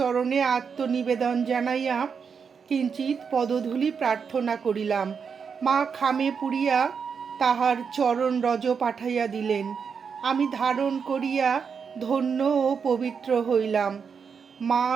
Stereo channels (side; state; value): left; quieter; 6.2 dB